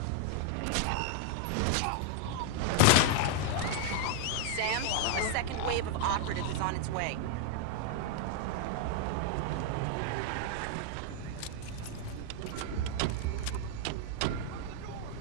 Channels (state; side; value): different; both; correlation 0.00